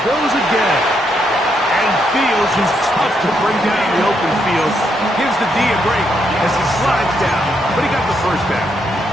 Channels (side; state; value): both; normal; correlation 0.77